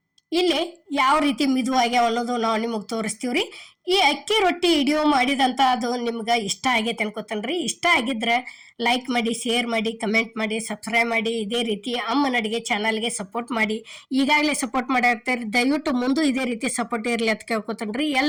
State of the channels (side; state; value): both; identical; correlation 1.00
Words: ಇಲ್ಲಿ ಯಾವ ರೀತಿ ಮಿದುವಾಗ್ಯಾವ ಅನ್ನೋದು ನಾವು ನಿಮಗೆ ತೋರಿಸ್ತೀವ್ರಿ. ಈ ಅಕ್ಕಿ ರೊಟ್ಟಿ ವಿಡಿಯೋ ಮಾಡಿದಂತ ಅದು ನಿಮ್ಗೆ ಇಷ್ಟ ಆಗೈತೆ ಅನ್ಕೋತನ್ರಿ. ಇಷ್ಟ ಆಗಿದ್ರೆ ಲೈಕ್ ಮಾಡಿ, ಶೇರ್ ಮಾಡಿ, ಕಮೆಂಟ್ ಮಾಡಿ, ಸಬ್ಸ್ಕ್ರೈಬ್ ಮಾಡಿ. ಇದೇ ರೀತಿ ಅಮ್ಮನ ಅಡಿಗೆ ಚಾನಲ್ಗೆ ಸಪೋರ್ಟ್ ಮಾಡಿ. ಈಗಾಗಲೇ ಸಪೋರ್ಟ್ ಮಾಡಿರ್ತೀರಿ, ದಯವಿಟ್ಟು ಮುಂದೆ ಇದೇ ರೀತಿ ಸಪೋರ್ಟ್ ಇರಲಿ ಅಂತ ಕೇಳ್ಕೊತನ್ರಿ.